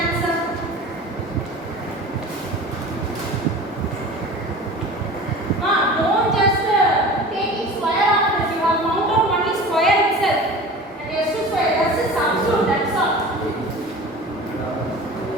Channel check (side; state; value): right; noise; rumble, 29 dB below the sound